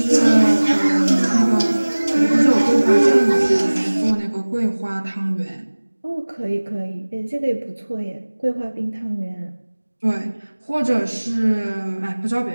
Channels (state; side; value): inverted; both; correlation -1.00